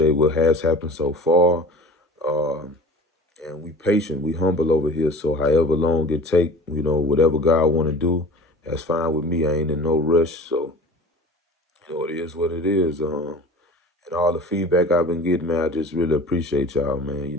what has happened so far. Um, and we patient, we humble over here. So however long it take, whatever God want to do, that's fine with me. I ain't in no rush. So, it is what it is. And all the feedback I've been getting, man, I just really appreciate y'all,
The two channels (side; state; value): both; normal; correlation 0.40